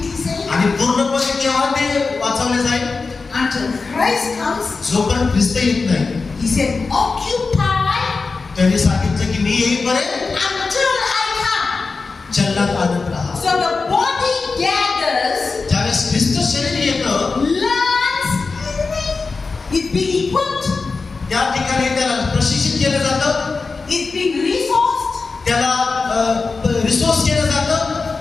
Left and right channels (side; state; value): right; quieter; 4.3 dB